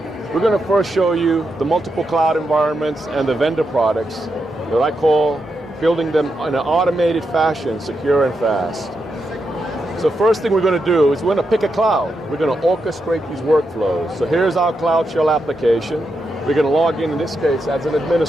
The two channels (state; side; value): normal; both; correlation 0.85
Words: We're going to first show you the multiple cloud environments and the vendor products that I call building them in an automated fashion, secure and fast. So first thing we're going to do is we're going to pick a cloud. We're going to orchestrate these workflows. So here's our CloudShell application. We're going to log in this case, as an